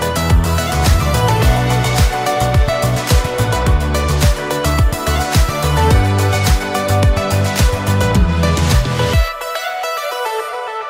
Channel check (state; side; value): identical; both; correlation 1.00